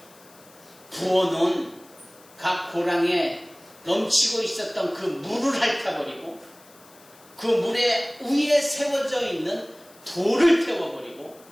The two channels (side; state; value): left; noise; hiss, 25 dB below the sound